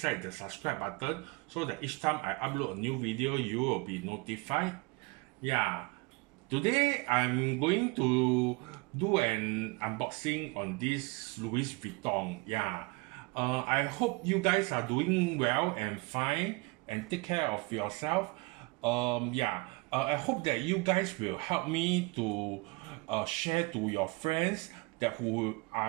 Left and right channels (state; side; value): quieter; left; 27.0 dB